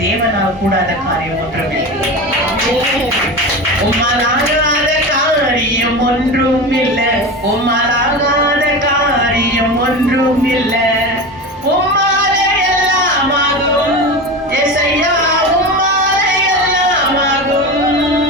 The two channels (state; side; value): normal; both; correlation 0.26